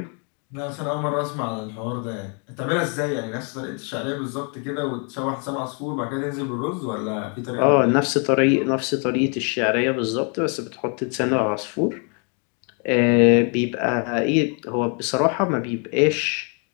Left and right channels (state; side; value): quieter; right; 38.1 dB